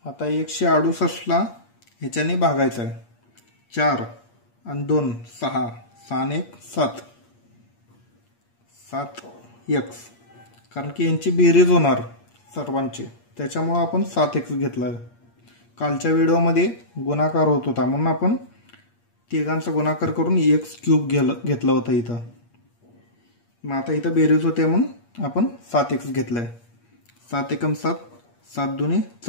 आता 168ला ह्याच्याने भागायचं आहे. 4 आणि 2 6, 6 आणि 1 7, 7x, कारण की यांची बेरीज होणार सर्वांची, त्याच्यामुळं आपण 7x घेतला आहे. कालच्या व्हिडिओमध्ये गुणाकार होत होता म्हणून आपण तिघांचा गुणाकार करून x³ घेतला होता इथं. मग आता इथं बेरीज होते म्हणून आपण 7x घेतलाय. 7 एकम 7, 7 दुनी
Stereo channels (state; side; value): late; right; 8.5 ms